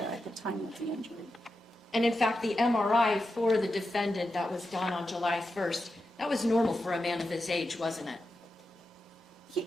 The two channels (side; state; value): both; normal; correlation 0.89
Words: at the time of the injury. And in fact, the MRI for the defendant that was done on July 1st, that was normal for a man of his age, wasn't it?